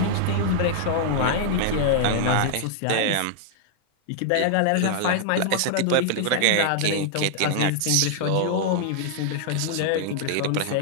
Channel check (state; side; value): different; both; correlation -0.01